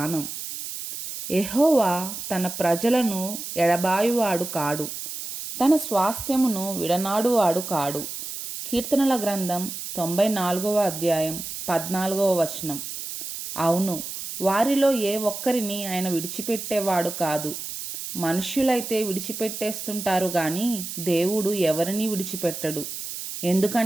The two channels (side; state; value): right; noise; hiss, 8 dB below the sound